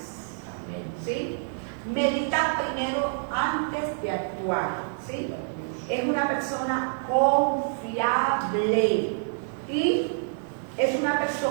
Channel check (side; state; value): left; silent; 60 dB below the other